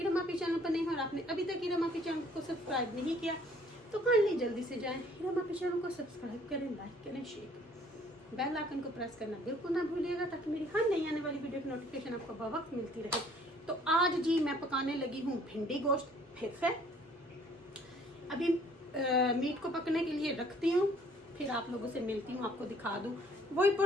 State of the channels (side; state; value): both; normal; correlation 0.59